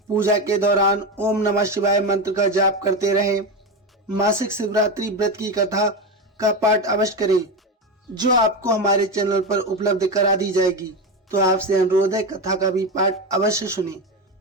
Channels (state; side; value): normal; both; correlation 0.16